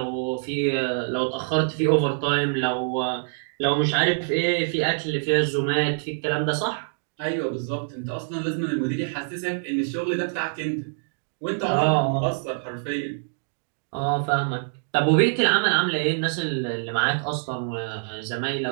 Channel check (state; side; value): silent; left; digital silence